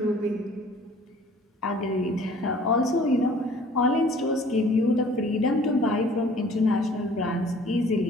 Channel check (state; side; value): normal; both; correlation 0.52